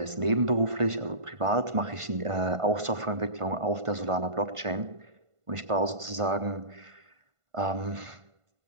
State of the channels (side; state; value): left; late; 1.5 ms